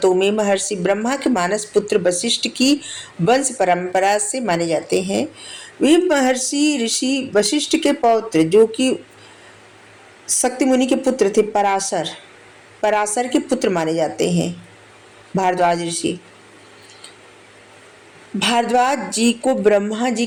में महर्षि ब्रह्मा के मानस पुत्र वशिष्ठ की वंश परंपरा से माने जाते हैं। वे महर्षि ऋषि वशिष्ठ के पौत्र जो कि शक्ति मुनि के पुत्र थे, पराशर पराशर के पुत्र माने जाते हैं भारद्वाज ऋषि। भारद्वाज जी को ब्रह्मा जी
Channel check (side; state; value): both; identical; correlation 1.00